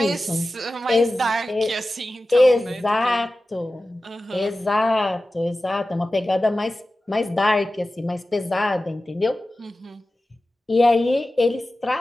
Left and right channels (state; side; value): normal; both; correlation 0.95